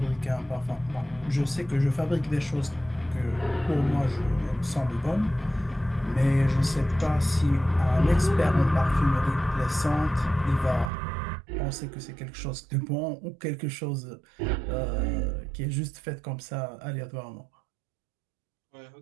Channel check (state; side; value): drops out; left; at 10.9 s